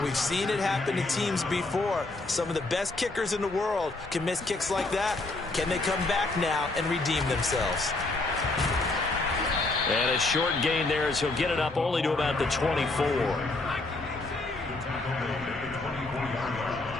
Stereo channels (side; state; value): right; quieter; 3.1 dB